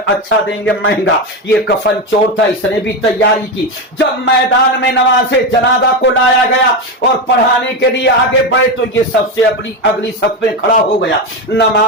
अच्छा देंगे महंगा। ये कफन चोर था, इसने भी तैयारी की। जब मैदान में नमाज़े जनाजा को लाया गया और पढ़ाने के लिए आगे बढ़े तो ये सबसे अगली सफ में खड़ा हो गया।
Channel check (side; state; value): both; normal; correlation 0.15